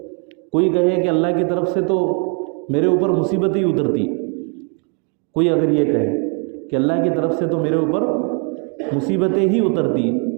کوئی کہے کہ اللہ کی طرف سے تو میرے اوپر مصیبت ہی اترتی، کوئی اگر یہ کہے کہ اللہ کی طرف سے تو میرے اوپر مصیبتیں ہی اترتی،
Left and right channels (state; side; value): quieter; left; 38.2 dB